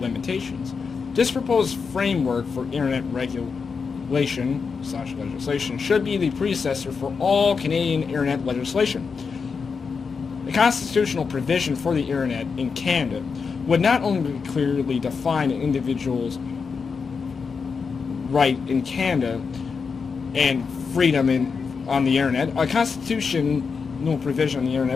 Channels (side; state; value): right; quieter; 5.4 dB